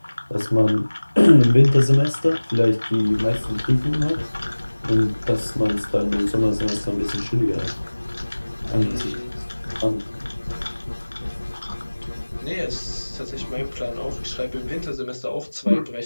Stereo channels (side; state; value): both; inverted; correlation -1.00